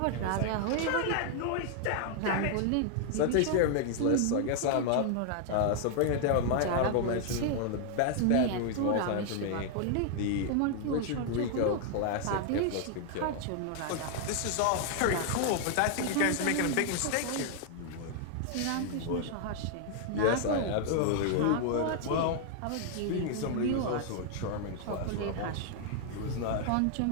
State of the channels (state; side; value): different; both; correlation 0.00